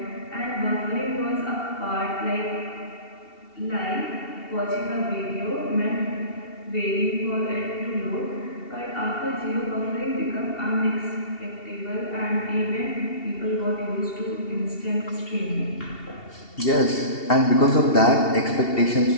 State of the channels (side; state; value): right; late; 2.7 ms